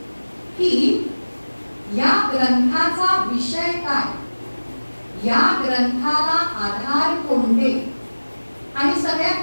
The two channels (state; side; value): inverted; both; correlation -1.00